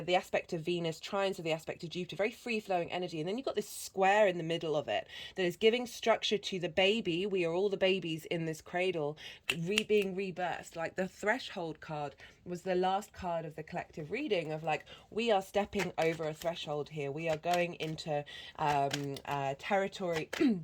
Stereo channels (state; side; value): identical; both; correlation 1.00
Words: the aspect of Venus. Trines are the aspect of Jupiter, very free flowing energy. And then you've got this square in the middle of it that is giving structure to the baby. We are all the babies in this cradle being rebirthed. Like the threshold card was the last card of the collective reading of like, we are stepping over a threshold here. We are going into territory